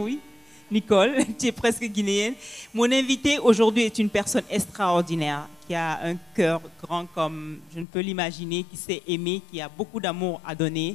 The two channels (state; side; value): drops out; right; at 7.9 s